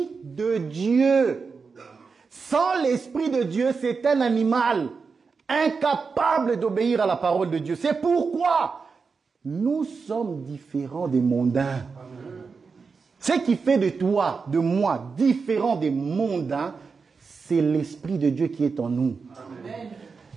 de Dieu. Sans l'esprit de Dieu, c'est un animal incapable d'obéir à la parole de Dieu. C'est pourquoi nous sommes différents des mondains. Ce qui fait de toi, de moi, différent des mondains, c'est l'esprit de Dieu qui est en nous. Amen.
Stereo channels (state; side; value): quieter; left; 5.0 dB